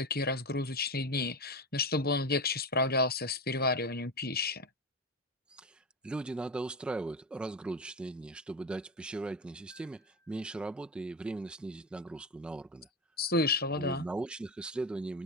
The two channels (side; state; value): both; normal; correlation 0.19